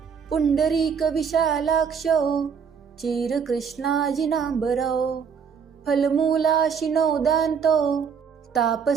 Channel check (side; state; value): left; quieter; 6.6 dB